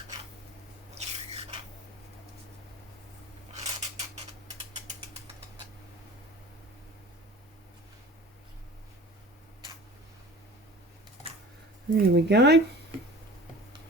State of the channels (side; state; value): both; normal; correlation 0.41